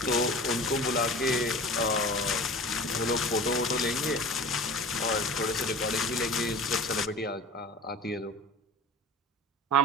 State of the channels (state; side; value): normal; both; correlation 0.37